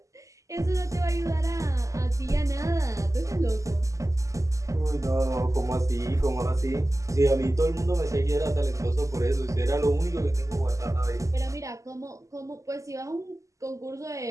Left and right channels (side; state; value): left; late; 0.16 ms